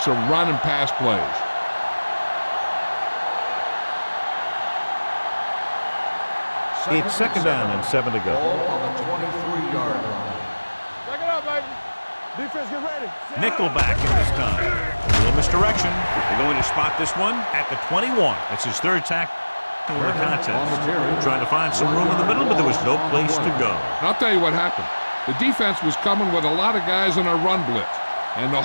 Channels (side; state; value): both; inverted; correlation -1.00